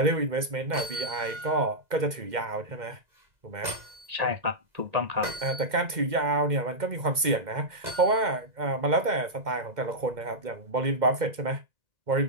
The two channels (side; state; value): left; late; 2.1 ms